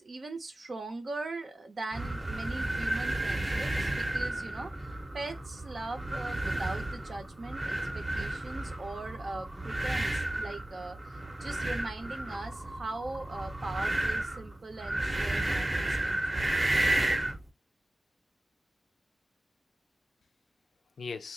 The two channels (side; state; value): both; normal; correlation 0.96